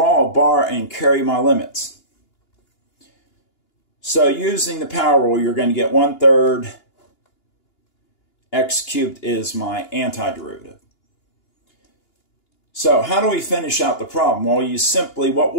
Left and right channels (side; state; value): right; late; 2.9 ms